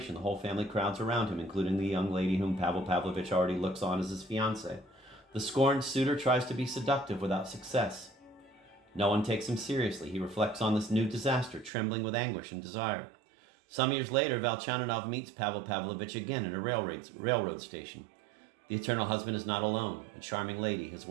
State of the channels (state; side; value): drops out; left; at 11.7 s